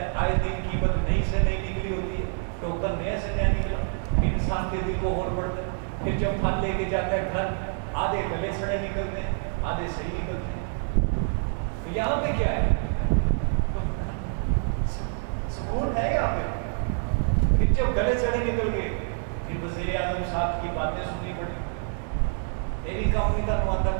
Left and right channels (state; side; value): silent; left; 57 dB below the other